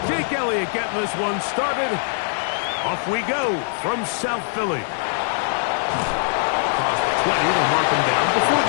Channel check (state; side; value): silent; right; 57 dB below the other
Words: Jake Elliott getting this one started. Off we go from South Philly. Across the 20, they'll mark him down before